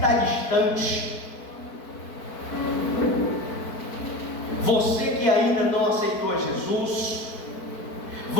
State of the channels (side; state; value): right; late; 4.5 ms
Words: distante, você que ainda não aceitou a Jesus,